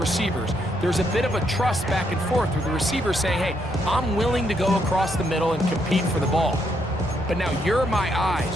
There's a bit of a trust back and forth with the receiver saying, hey, I'm willing to go across the middle and compete for the ball. But now you're my eyes.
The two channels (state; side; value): normal; both; correlation 0.75